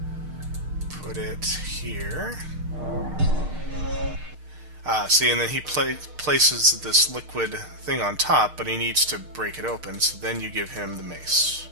put it here. See, and then he places this liquid thing on top, but he needs to break it open, so then you give him the mace.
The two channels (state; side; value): late; left; 6.5 ms